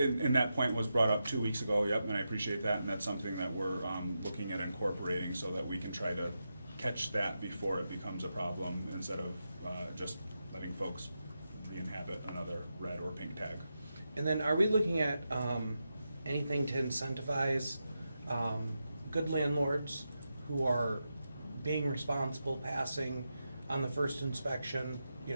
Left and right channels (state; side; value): inverted; both; correlation -0.88